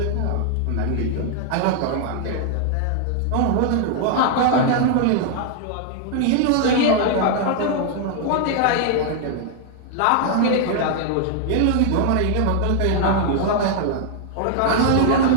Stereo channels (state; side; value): different; both; correlation 0.00